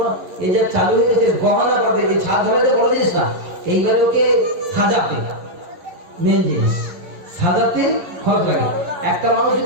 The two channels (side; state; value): left; late; 11 ms